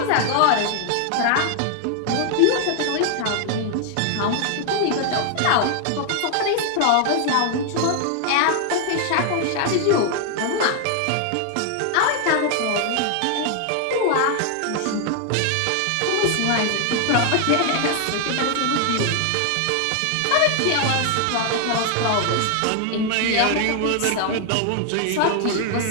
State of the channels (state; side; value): different; both; correlation 0.00